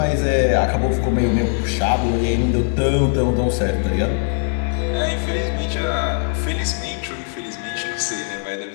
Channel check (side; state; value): right; silent; digital silence